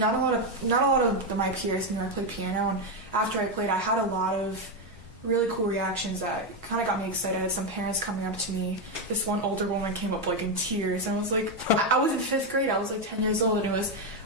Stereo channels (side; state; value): both; normal; correlation 0.06